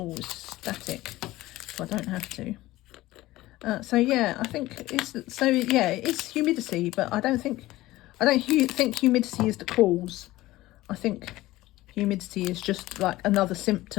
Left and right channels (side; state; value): right; quieter; 17.4 dB